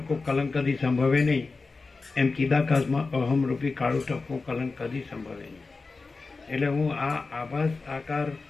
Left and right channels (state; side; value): quieter; right; 4.0 dB